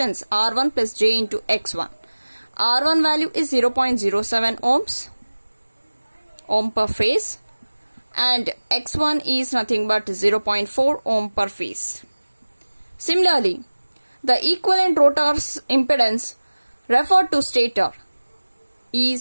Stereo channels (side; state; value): both; inverted; correlation -1.00